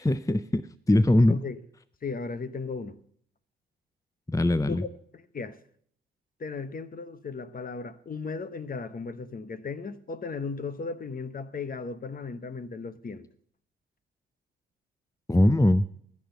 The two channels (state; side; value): normal; both; correlation 0.91